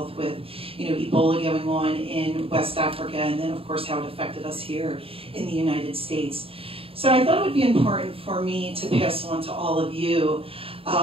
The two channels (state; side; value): late; left; 0.27 ms